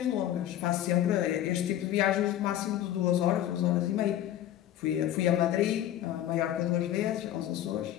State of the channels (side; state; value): right; quieter; 12.1 dB